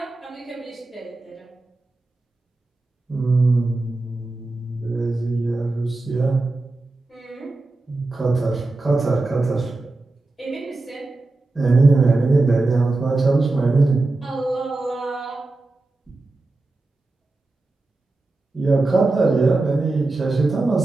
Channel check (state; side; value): quieter; left; 3.2 dB